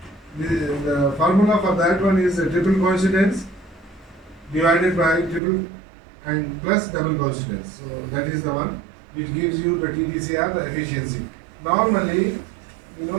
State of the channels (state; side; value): drops out; left; at 5.4 s